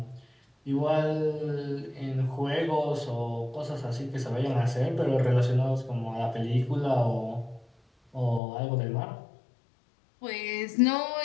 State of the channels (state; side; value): drops out; right; at 8.4 s